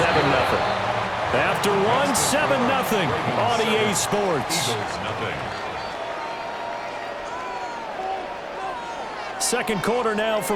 After one, 7-0 on EA Sports. Second quarter now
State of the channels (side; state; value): both; identical; correlation 1.00